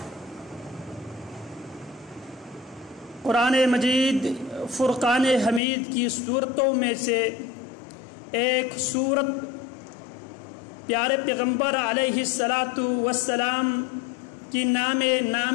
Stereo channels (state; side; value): drops out; right; at 5.6 s